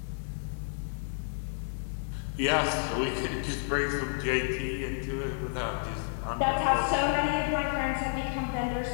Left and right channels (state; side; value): silent; right; 57 dB below the other